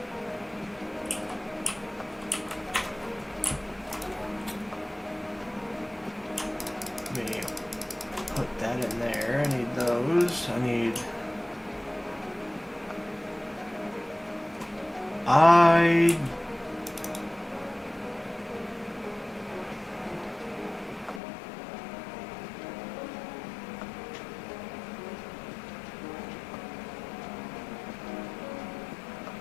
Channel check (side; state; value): right; drops out; at 21.2 s